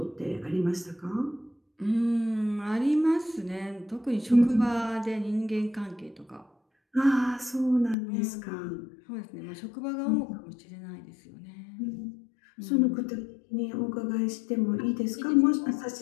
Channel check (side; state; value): right; drops out; at 8.0 s